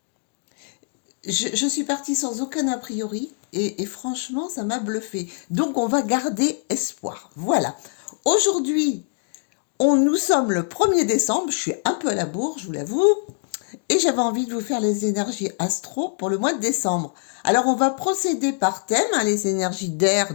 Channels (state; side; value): silent; right; 63 dB below the other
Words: Je suis partie sans aucun a priori et franchement, ça m'a bluffée. Donc, on va garder espoir. Voilà. Aujourd'hui, nous sommes le 1er décembre, je suis un peu à la bourre, je vous l'avoue, et j'avais envie de vous faire les énergies astro pour le mois de décembre. Alors, on va procéder par thème, hein, les énergies d'air,